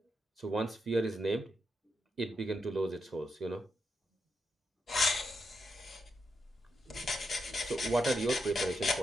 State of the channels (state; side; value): normal; both; correlation 0.84